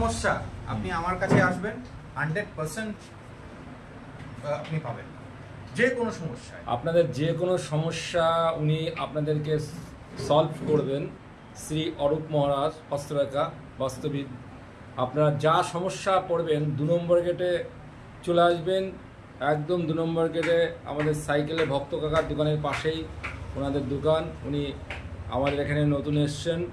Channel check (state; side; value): identical; both; correlation 1.00